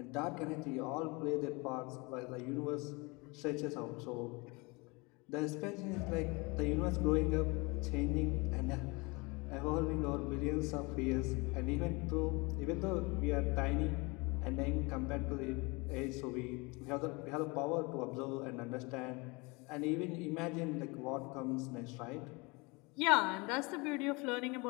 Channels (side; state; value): right; quieter; 26.9 dB